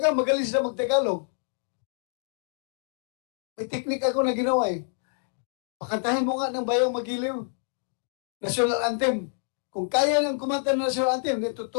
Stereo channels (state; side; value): silent; right; 60 dB below the other